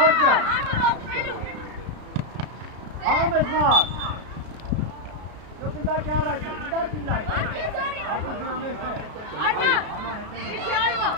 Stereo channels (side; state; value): left; late; 33 ms